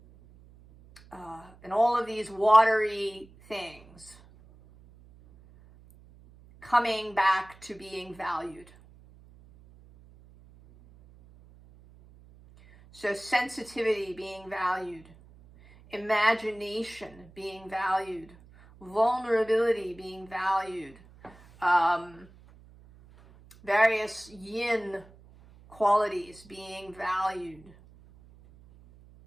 in all of these watery things, coming back to being valued. So sensitivity being valued, imagination being valued, vulnerability being valued, various yin qualities being valued,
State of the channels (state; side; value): noise; right; hum, 24 dB below the sound